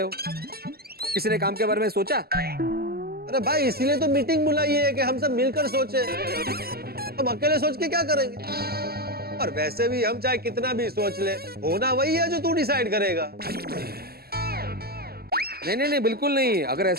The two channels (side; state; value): left; late; 0.45 ms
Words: हो। किसी ने काम के बारे में सोचा? अरे भाई इसीलिए तो मीटिंग बुलाई है कि हम सब मिलकर सोचे। हम अकेले सोच के क्या करेंगे? और वैसे भी हम चाहे कितना भी सोच ले, होना वही है जो तू डिसाइड करेगा। नहीं नहीं नहीं, बिल्कुल नहीं। अगर